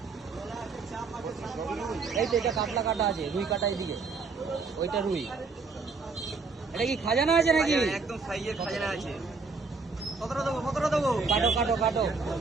এই তো এটা কাতলা কাটা আছে, রুই কাটা এদিকে, ওইটা রুই। এটা কি খাজানা আছে নাকি? একদম সাইজের খাজানা আছে। কতটা দেবো, কতটা দেবো? কাটো কাটো কাটো,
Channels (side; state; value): left; quieter; 4.5 dB